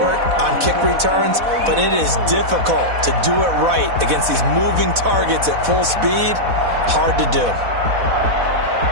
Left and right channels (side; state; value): left; late; 4.1 ms